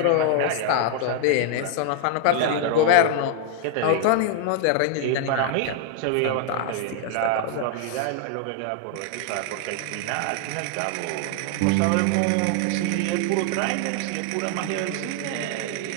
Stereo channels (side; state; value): both; different; correlation 0.00